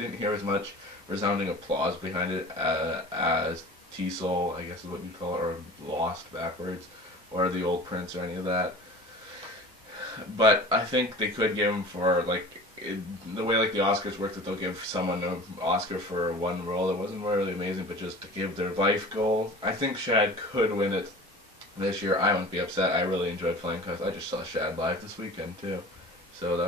hear as much resounding applause behind it as T-Soul, I guess is what you call it, or Lost backwards, or The Old Prince, or any of that. But I think they could give him for, like, the way like the Oscars work, that they'll give someone an Oscar for one role. It wasn't really amazing, but just to give their life goal. I think Shad could win it this year. I wouldn't be upset. I really enjoyed Flying Colors. I just saw Shad live this weekend too, so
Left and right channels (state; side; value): normal; both; correlation 0.40